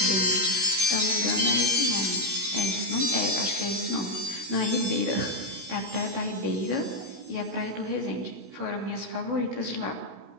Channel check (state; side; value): late; left; 16 ms